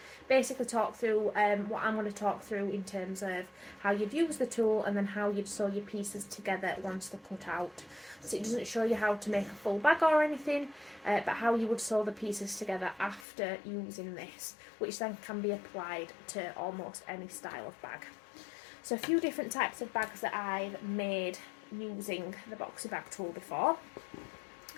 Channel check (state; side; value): drops out; right; at 13.2 s